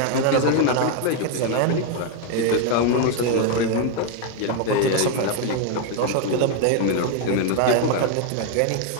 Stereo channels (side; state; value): both; different; correlation 0.01